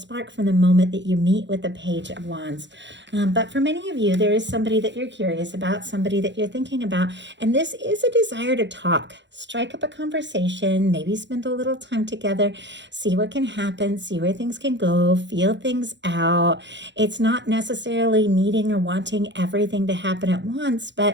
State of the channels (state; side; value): late; left; 0.52 ms